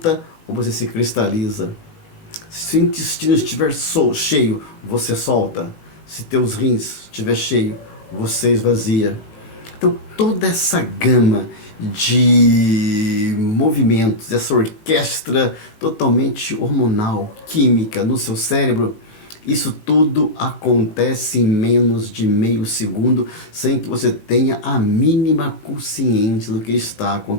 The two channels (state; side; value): late; right; 19 ms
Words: ou você se cristaliza. Se o intestino estiver cheio, você solta. Se teus rins estiver cheio, você esvazia. Então toda essa gama de movimentos, essa orquestra totalmente hormonal, química no seu cérebro, isso tudo acontece em menos de meio segundo, sem que você tenha a mínima consciência do que está